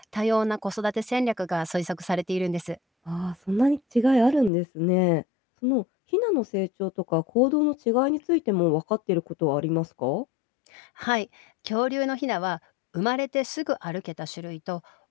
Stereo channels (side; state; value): right; drops out; at 4.5 s